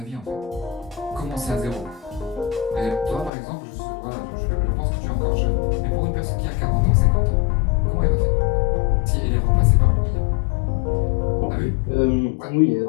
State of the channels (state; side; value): drops out; right; at 3.3 s